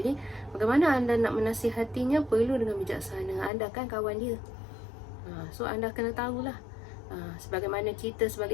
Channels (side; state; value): right; drops out; at 3.5 s